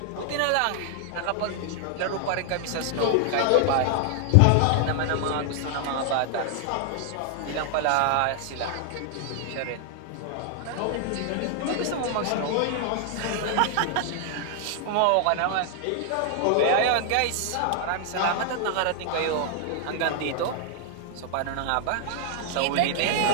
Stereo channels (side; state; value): both; different; correlation 0.00